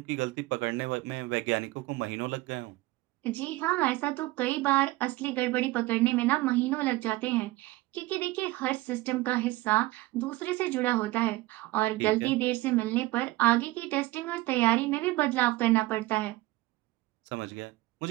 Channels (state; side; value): quieter; left; 18.9 dB